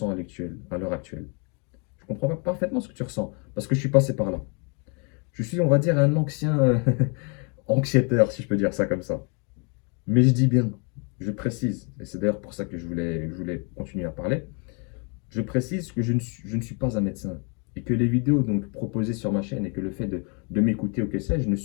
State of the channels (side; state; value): right; quieter; 35.5 dB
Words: à l'heure actuelle. Je comprends parfaitement ce que tu ressens parce que je suis passé par là. Je suis, on va dire, un ancien anxiéteur, si je peux dire ça comme ça. Mais je dis bien, je précise, et c'est d'ailleurs pour ça que je voulais continuer à parler, je précise que je ne suis pas un médecin et que les vidéos donc proposées sur ma chaîne et que le fait de m'écouter ou que sais-je ne